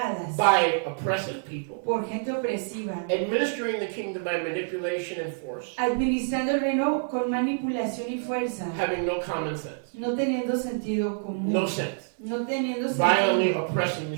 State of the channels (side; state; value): left; silent; 60 dB below the other